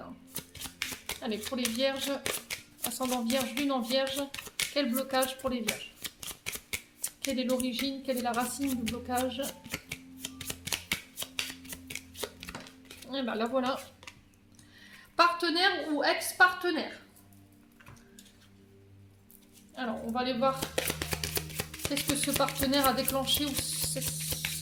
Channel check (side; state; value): both; identical; correlation 1.00